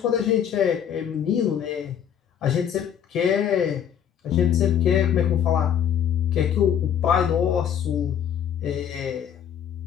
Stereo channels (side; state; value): right; quieter; 8.9 dB